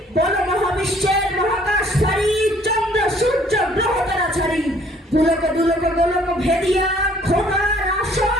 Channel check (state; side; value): normal; both; correlation 0.59